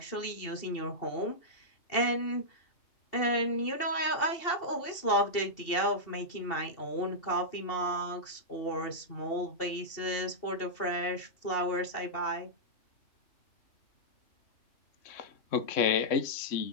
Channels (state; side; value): late; right; 2.7 ms